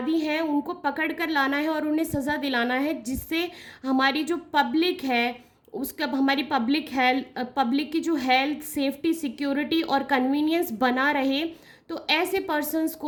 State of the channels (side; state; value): both; identical; correlation 1.00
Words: हैं उनको पकड़ कर लाना है और उन्हें सज़ा दिलाना है, जिससे हमारी जो पब्लिक है उसका, हमारी पब्लिक की जो हेल्थ, सेफ्टी, सिक्योरिटी और कन्वीनियंस बना रहे। तो ऐसे पर्सन्स